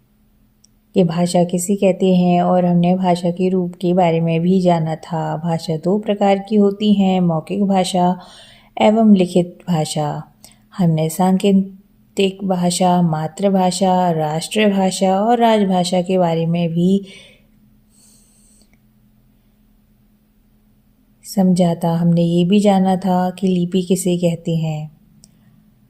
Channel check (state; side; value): identical; both; correlation 1.00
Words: कि भाषा किसे कहते हैं और हमने भाषा के रूप के बारे में भी जाना था। भाषा दो प्रकार की होती हैं, मौखिक भाषा एवं लिखित भाषा। हमने सांकेतिक भाषा, मातृभाषा, राष्ट्रभाषा और राजभाषा के बारे में भी समझा था। हमने ये भी जाना था कि लिपि किसे कहते हैं।